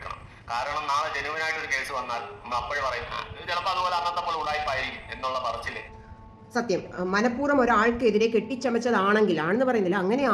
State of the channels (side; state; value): both; identical; correlation 1.00